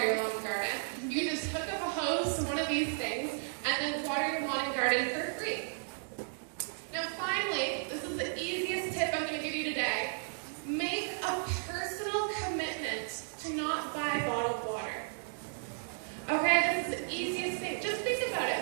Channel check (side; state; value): left; silent; digital silence